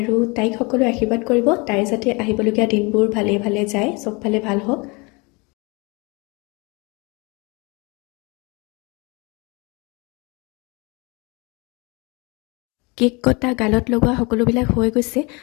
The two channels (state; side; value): quieter; right; 28.1 dB